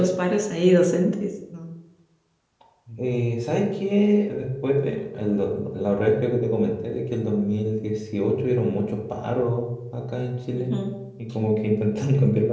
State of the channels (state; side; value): identical; both; correlation 1.00